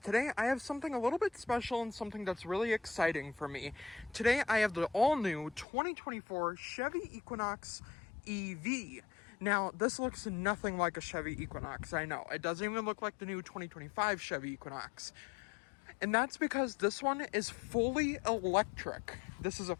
I have something a little bit special and something that's really exciting for me. Today I have the all-new 2024 Chevy Equinox EV. Now this looks nothing like a Chevy Equinox, I know. It doesn't even look like the new 2025 Chevy Equinox. And that's because this one is fully electric. This is a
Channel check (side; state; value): right; drops out; at 5.7 s